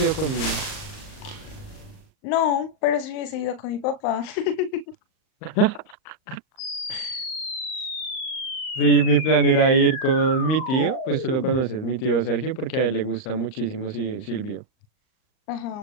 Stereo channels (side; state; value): right; late; 38 ms